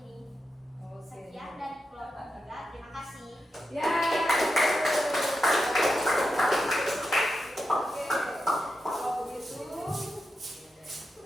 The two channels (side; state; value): both; normal; correlation 0.88